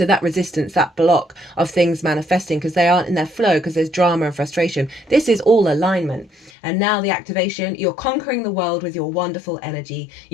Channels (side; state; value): right; drops out; at 6.5 s